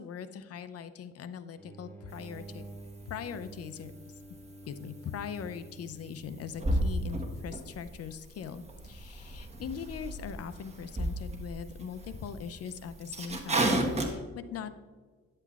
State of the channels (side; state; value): both; normal; correlation 0.47